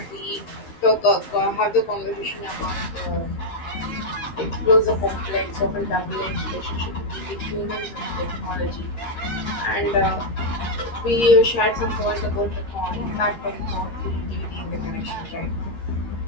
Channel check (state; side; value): late; right; 13 ms